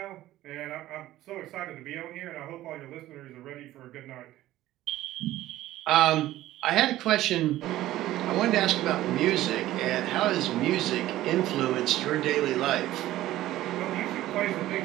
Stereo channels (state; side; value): quieter; left; 15.0 dB